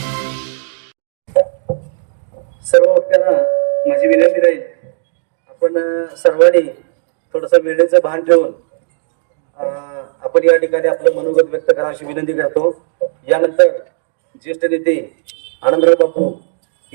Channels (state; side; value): silent; left; digital silence